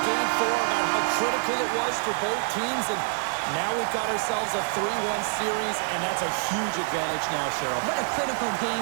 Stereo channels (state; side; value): silent; left; digital silence